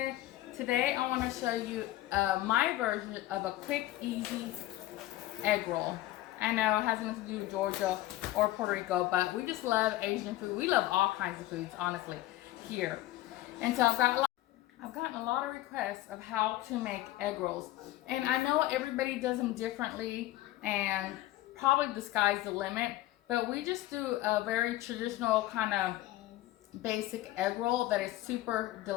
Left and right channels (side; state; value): right; quieter; 16.0 dB